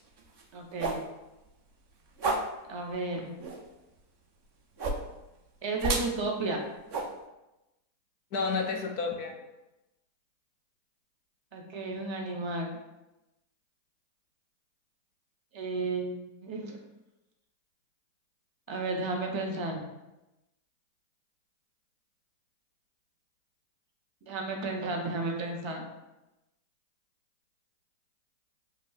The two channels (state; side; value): late; right; 3.6 ms